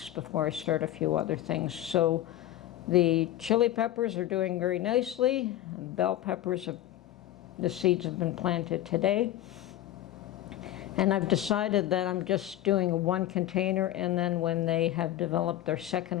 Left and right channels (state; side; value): quieter; right; 13.6 dB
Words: before I start a few other things. So the chili peppers are doing very nicely. Bell peppers, the seeds have been planted today. And I've decided that I'm just doing one container, and then when they have developed their